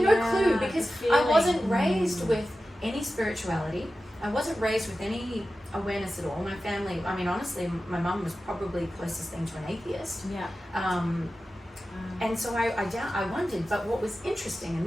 no clue because I wasn't raised with any spirituality. I wasn't raised with any awareness at all. My family, I mean, honestly, my mum was probably the closest thing to an atheist. And so I wondered, but what was interesting,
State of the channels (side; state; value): both; normal; correlation 0.94